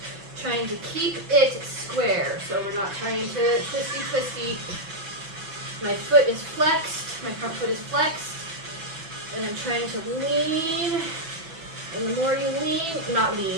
trying to keep it square. So we're not trying to twisty. My foot is flexed, my front foot is flexed, and I'm trying to lean. And the more you lean, not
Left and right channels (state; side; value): late; left; 6.1 ms